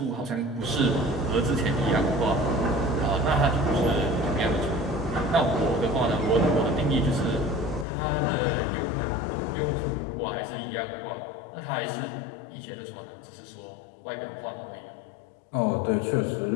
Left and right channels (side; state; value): right; drops out; at 7.9 s